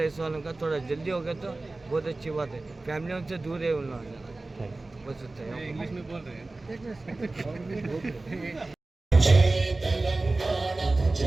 ऐसा वालों का थोड़ा जल्दी हो गया तो बहुत अच्छी बात है। फैमिली उनसे दूर है उन लोगों बस होता है। इंग्लिश में बोल रहे हैं।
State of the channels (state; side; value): quieter; left; 3.2 dB